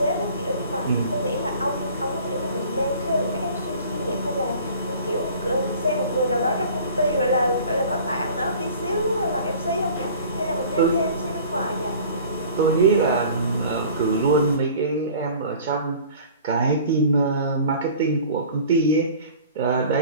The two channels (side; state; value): both; inverted; correlation -0.46